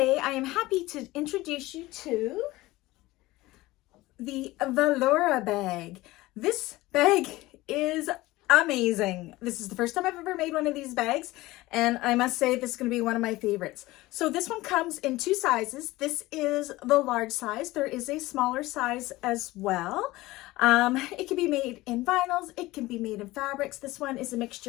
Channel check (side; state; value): right; quieter; 18.9 dB